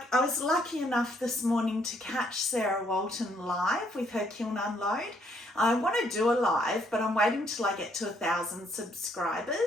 was lucky enough this morning to catch Sarah Walton live with her kiln unload. I want to do a live, but I'm waiting till I get to 1,000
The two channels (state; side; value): normal; both; correlation 0.69